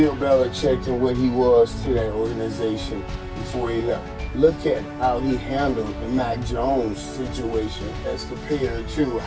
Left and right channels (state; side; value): identical; both; correlation 1.00